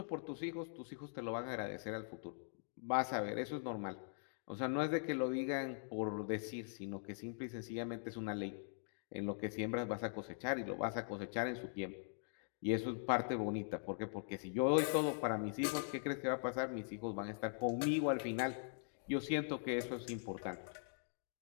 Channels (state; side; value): silent; right; digital silence